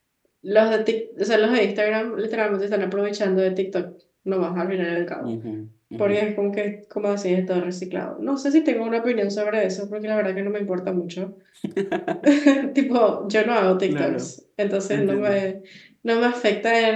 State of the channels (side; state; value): both; identical; correlation 1.00